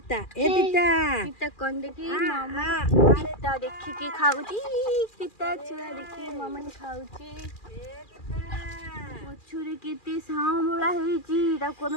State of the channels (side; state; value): right; late; 2.4 ms